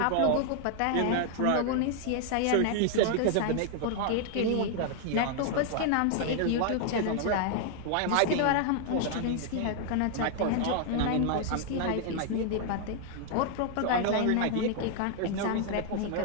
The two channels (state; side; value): different; both; correlation 0.00